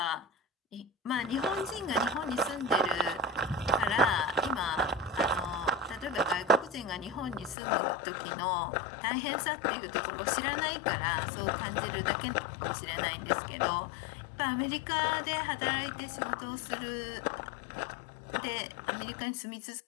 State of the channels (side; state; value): right; drops out; at 7.6 s